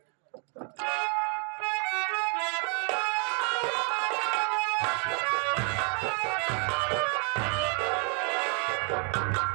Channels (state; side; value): quieter; left; 39.2 dB